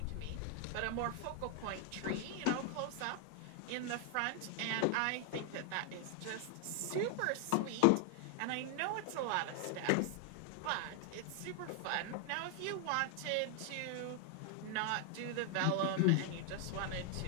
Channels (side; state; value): both; different; correlation 0.00